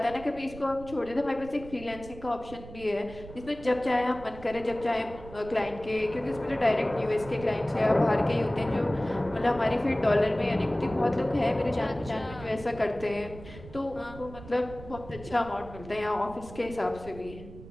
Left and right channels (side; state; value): right; noise; rumble, 15 dB below the sound